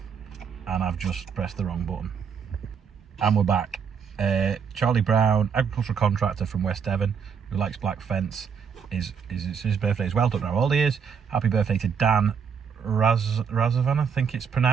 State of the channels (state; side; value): quieter; left; 6.7 dB